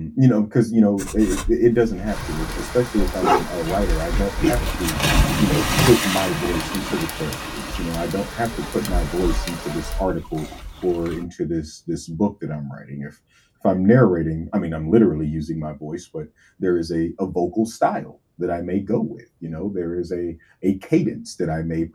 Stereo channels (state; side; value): identical; both; correlation 1.00